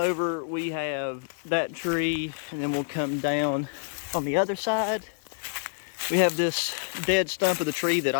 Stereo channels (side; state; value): right; silent; 60 dB below the other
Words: We have that tree, and then we'll come down on the other side. We have this dead stump of the tree that